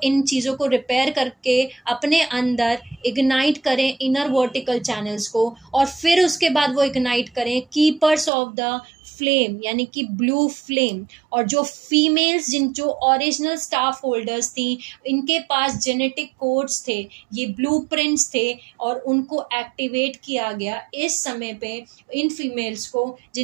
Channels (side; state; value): left; drops out; at 8.3 s